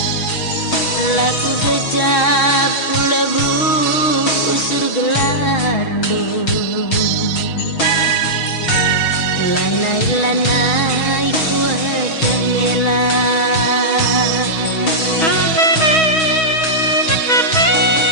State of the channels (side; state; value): right; late; 6.3 ms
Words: Laku bejak lebu usur gelardu. Lanai-lanai kuat ngelah.